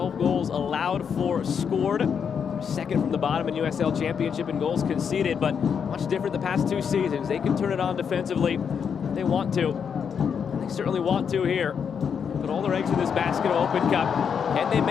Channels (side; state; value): right; quieter; 7.0 dB